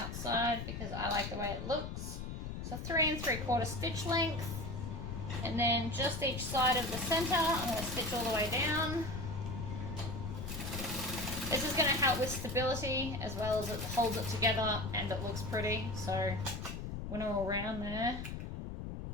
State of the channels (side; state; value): left; noise; rumble, 6 dB below the sound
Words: because I like the way it looks. So 3 3/4 stitch length, and then just each side of the center I'm going to stitch all the way down. This is going to help with stability as well as it holds it together and it looks pretty, so when we're all around there.